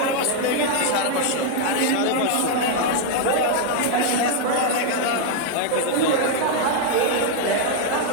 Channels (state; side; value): different; both; correlation 0.00